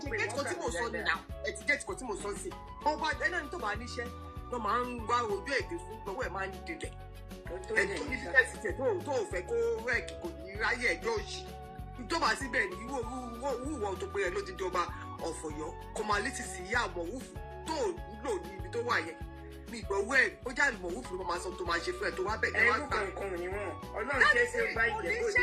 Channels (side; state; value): both; identical; correlation 1.00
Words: ọba ẹni tó bá níṣẹ́ ló máa ń wá ojú èdè fún lọ́wọ́ ẹ̀ máa ń dilẹ̀ ẹ̀tọ́ ní fífẹ́sì tẹ̀ tó ò fẹ́ kó rẹ́ẹ̀kì kò ní ráyè ẹjọ́ òṣì ìjọba síbẹ̀ ní wúwọ́ tó pé ẹ ló ti jọba ọ̀fọ̀yọ́ kọmalítì sí ìyá àmọ̀wúfù tó lò ní ibi tó wà yẹn mi ìgbọ̀wọ́ ẹ̀ ó jáde àmọ̀wúfù ló máa sọ tó máa ṣe fún ẹ tó wá bẹ̀ ẹ wá gbà. ẹrú kankan ni wọn Ọlọ́run ṣe é ṣe bá ìjẹ́bú